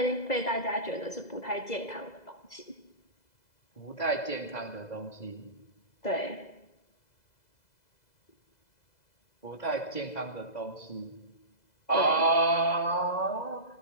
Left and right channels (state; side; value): late; right; 2.0 ms